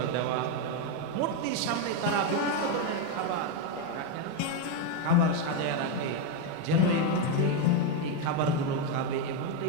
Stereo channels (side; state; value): both; different; correlation 0.03